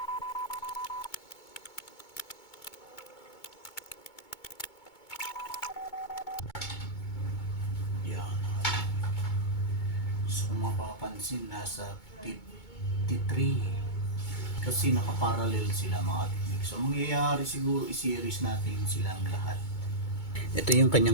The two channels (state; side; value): late; right; 2.2 ms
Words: Yan. So kung mapapansin, nasa 53 kasi nakaparallel sila mga technique. So mangyayari siguro i-series natin silang lahat. Ito yung